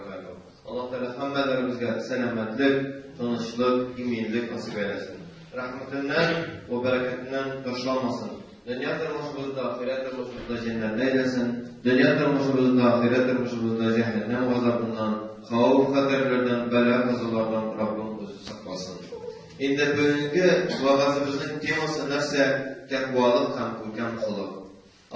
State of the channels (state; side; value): identical; both; correlation 1.00